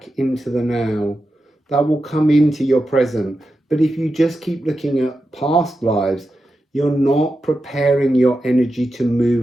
into the now. That will come into your present. But if you just keep looking at past lives, you're not preparing your energy to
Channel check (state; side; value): normal; both; correlation 0.90